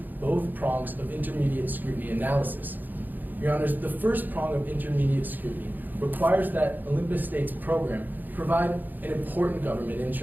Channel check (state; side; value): late; left; 0.087 ms